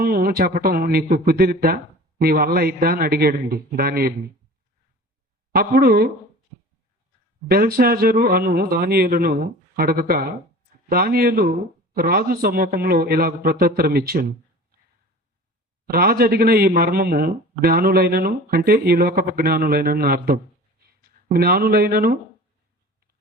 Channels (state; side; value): normal; both; correlation 0.40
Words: చెప్పటం నీకు కుదిరిద్దా, నీ వల్ల అయిద్దా అని అడిగాడండి దానియేలుని. అప్పుడు బెల్షాజరు అను దానియేలును అడగక దానియేలు రాజు సమ్మూఖంలో ఇలాగ ప్రత్యుత్తరం ఇచ్చాను. రాజు అడిగిన ఈ మర్మము జ్ఞానులైనను, అంటే ఈ లోకపు జ్ఞానులైనను అర్థం, జ్ఞానులైనను,